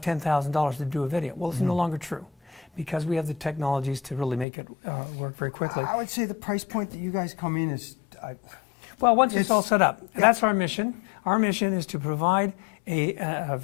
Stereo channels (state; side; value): drops out; right; at 4.5 s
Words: $10,000 to do a video. Well, it's no longer true, because we have the technologies to really make it work very quickly. I would say the price point that you guys come in is... well, once it's all set up, that's our mission. Our mission is to provide a